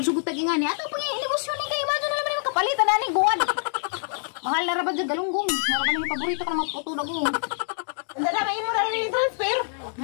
tag ingani. Ato pang negosyo ni kay Imado na naman yung kapalitan na ni guwan. Mahal na rabad dyan galunggong. Naraban yung paborito ka na maputo na gong. Hindi na may mo na rin transfer.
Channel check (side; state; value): right; silent; digital silence